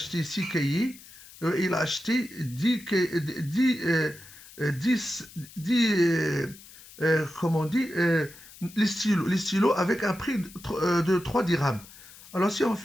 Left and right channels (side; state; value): left; noise; hiss, 20 dB below the sound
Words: 6 cahiers. Il a acheté 10 comment on dit, les stylos avec un prix de 3 dirhams. Alors si on